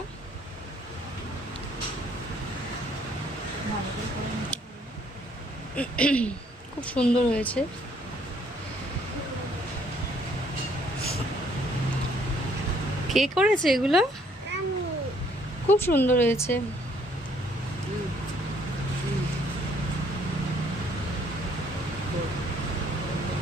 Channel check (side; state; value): both; normal; correlation 0.64